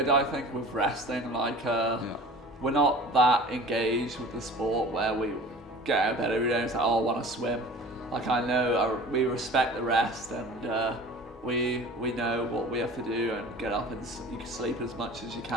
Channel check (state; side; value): normal; both; correlation 0.42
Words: I think, with resting. Like, we're not that engaged with the sport where we get out of bed every day and it's like, oh, I want to swim. Like, I know we respect the rest and we know what we have to do and get up and you can sleep as much as you